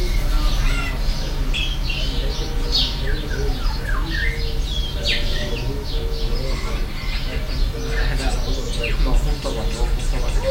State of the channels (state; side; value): identical; both; correlation 1.00